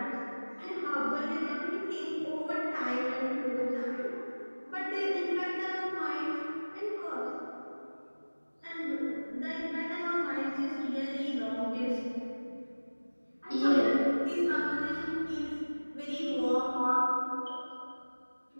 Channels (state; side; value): inverted; both; correlation -1.00